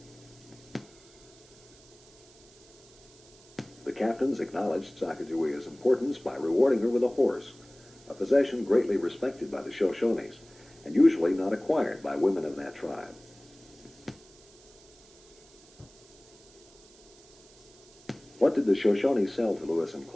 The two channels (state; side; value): noise; right; hiss, 25 dB below the sound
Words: The captains acknowledged Sacagawea's importance by rewarding her with a horse, a possession greatly respected by the Shoshones, and usually not acquired by women of that tribe. What did the Shoshone sell to Lewis and